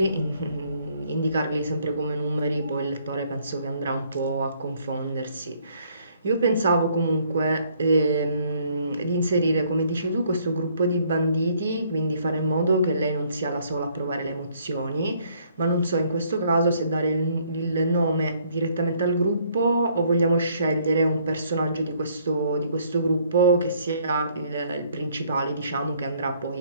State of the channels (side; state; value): both; inverted; correlation -0.65